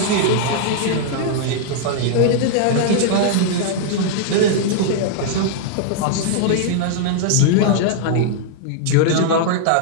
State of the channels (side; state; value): both; different; correlation -0.01